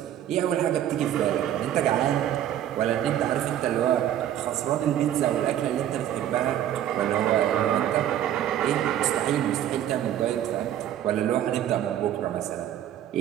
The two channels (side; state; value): left; quieter; 11.3 dB